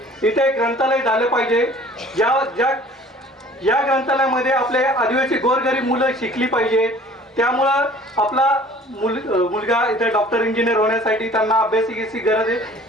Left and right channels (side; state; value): both; normal; correlation 0.50